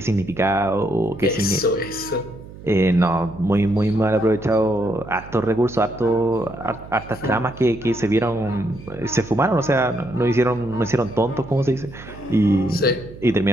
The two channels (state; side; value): noise; right; hum, 16 dB below the sound